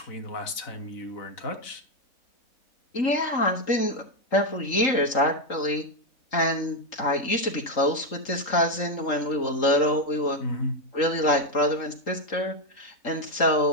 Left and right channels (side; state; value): right; late; 3.8 ms